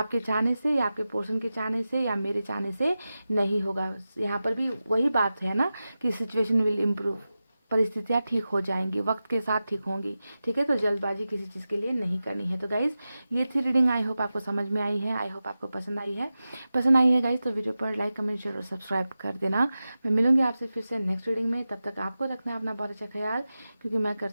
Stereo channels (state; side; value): inverted; both; correlation -0.94